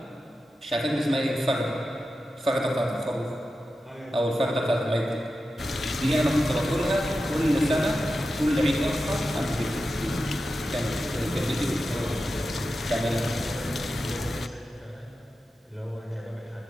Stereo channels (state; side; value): normal; both; correlation 0.91